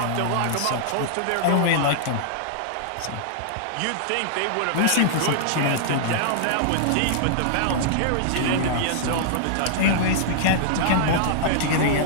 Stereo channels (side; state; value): both; different; correlation -0.02